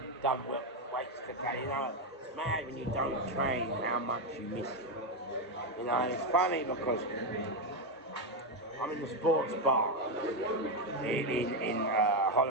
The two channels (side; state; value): both; normal; correlation 0.07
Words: done weights today. You know, it's mad when you don't train how much you miss it. You know, and it's funny because I'm in the sports bar in